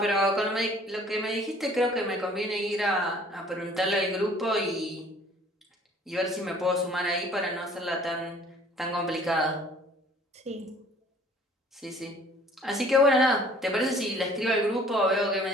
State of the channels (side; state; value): both; normal; correlation 0.54